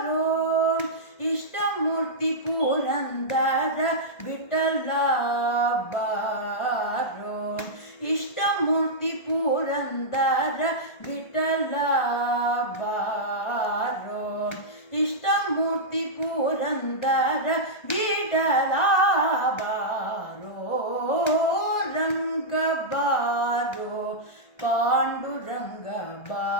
ಇಷ್ಟಮೂರ್ತಿ ಪುರಂದರ ವಿಠಲ ಬಾರೋ ಇಷ್ಟಮೂರ್ತಿ ಪುರಂದರ ವಿಠಲ ಬಾರೋ ಇಷ್ಟಮೂರ್ತಿ ಪುರಂದರ ವಿಠಲ ಬಾರೋ ರಂಗ ಬಾರೋ ಪಾಂಡುರಂಗ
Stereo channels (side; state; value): right; late; 1.5 ms